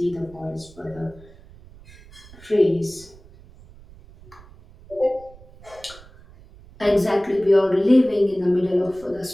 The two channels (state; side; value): noise; right; rumble, 22 dB below the sound